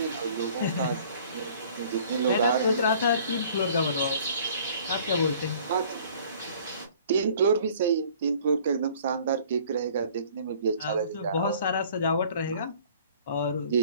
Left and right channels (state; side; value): inverted; both; correlation -0.53